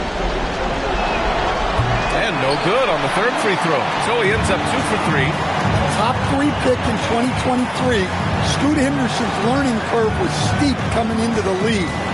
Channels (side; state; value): both; identical; correlation 1.00